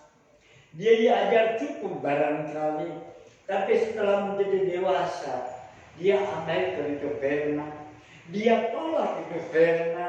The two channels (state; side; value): identical; both; correlation 1.00